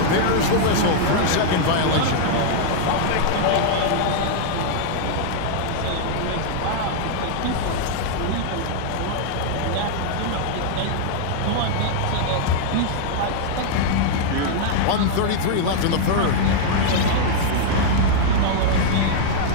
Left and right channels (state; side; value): different; both; correlation -0.01